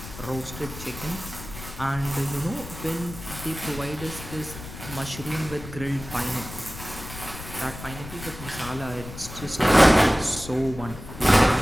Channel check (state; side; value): noise; left; rumble, 13 dB below the sound